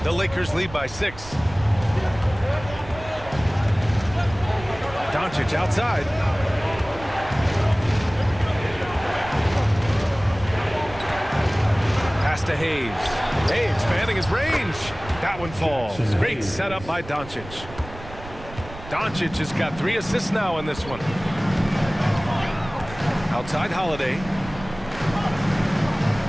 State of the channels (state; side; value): noise; right; rumble, 15 dB below the sound